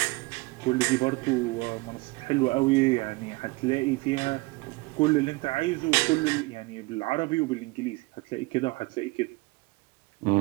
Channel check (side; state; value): left; quieter; 24.1 dB